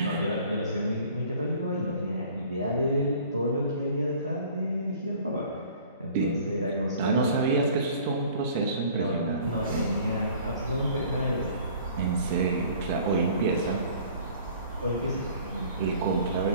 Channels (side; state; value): both; inverted; correlation -0.51